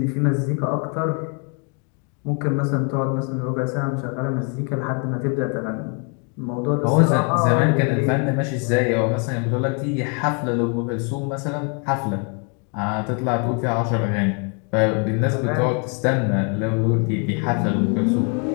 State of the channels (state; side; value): quieter; right; 37.8 dB